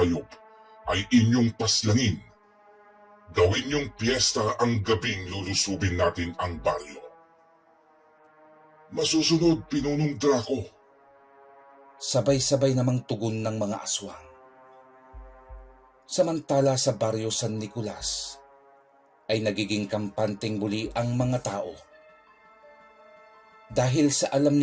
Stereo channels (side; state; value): both; identical; correlation 1.00